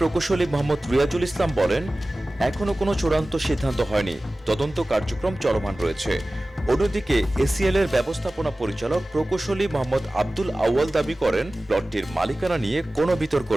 মোহাম্মদ রিয়াজুল ইসলাম বলেন, এখনো কোনো চূড়ান্ত সিদ্ধান্ত হয়নি, তদন্ত কার্যক্রম চলমান রয়েছে। অন্যদিকে এসিএল এর ব্যবস্থাপনা পরিচালক প্রকৌশলী মোহাম্মদ আব্দুল আউয়াল দাবি করেন, প্লটটির মালিকানা নিয়ে কোনো বিতর্ক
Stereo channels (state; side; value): normal; both; correlation 0.97